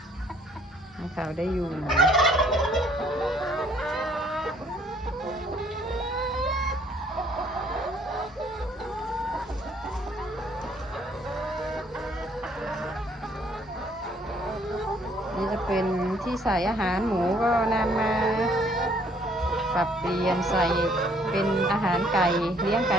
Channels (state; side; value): normal; both; correlation 0.62